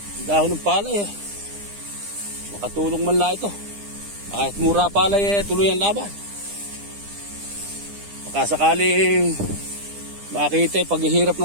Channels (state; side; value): late; left; 9.9 ms